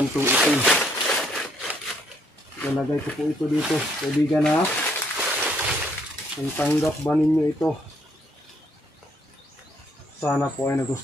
itim. Nalagay ko po ito dito kaibigan ha. Kung tanggap ba ninyo ito, sana po ay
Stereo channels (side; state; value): both; normal; correlation 0.69